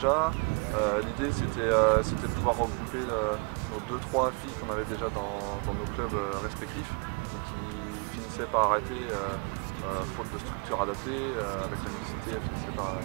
L'idée c'était de pouvoir regrouper nos 2-3 filles qu'on avait déjà dans nos clubs respectifs et qui finissaient par arrêter faute de structure adaptée. Avec la mixité, elles finissaient par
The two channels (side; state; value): left; quieter; 35.3 dB